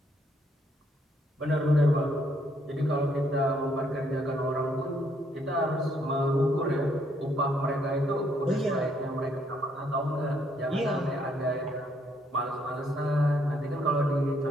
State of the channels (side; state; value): both; normal; correlation 0.70